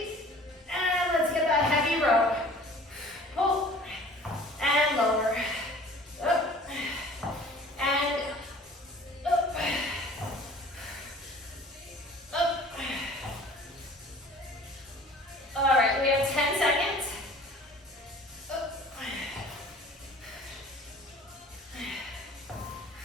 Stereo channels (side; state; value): both; normal; correlation 0.47